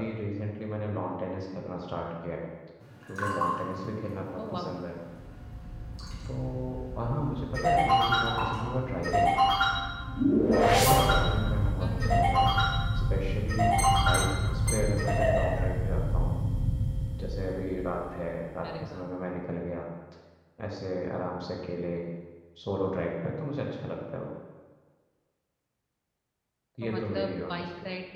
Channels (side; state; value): both; identical; correlation 1.00